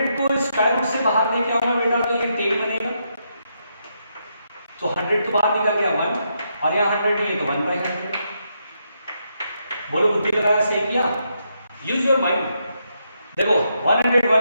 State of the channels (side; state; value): both; inverted; correlation -0.80